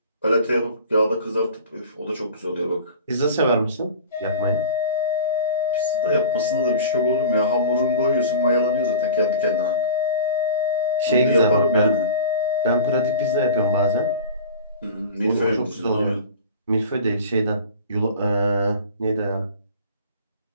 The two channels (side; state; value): both; inverted; correlation -0.38